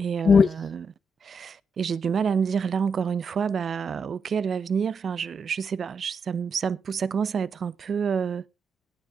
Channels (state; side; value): normal; both; correlation 0.81